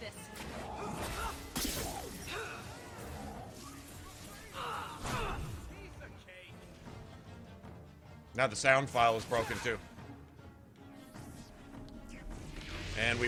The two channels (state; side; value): identical; both; correlation 1.00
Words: Now the sound file is broken too. And